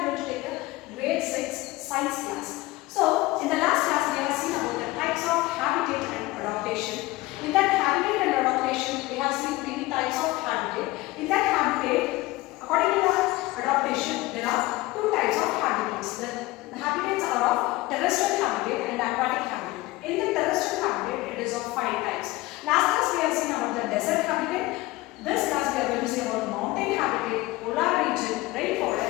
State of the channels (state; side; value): quieter; right; 19.6 dB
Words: going to take the grade 6 science class. So, in the last class we have seen about the types of habitat and adaptation. In that habitat and adaptation, we have seen three types of habitat. In that habitat, according to the adaptation, there are two types of habitats. The habitats are of terrestrial habitat and aquatic habitat. In the terrestrial habitat, it is of 5 types. Last class we have seen about the desert habitat. This class we are going to see about mountain habitat, polar region,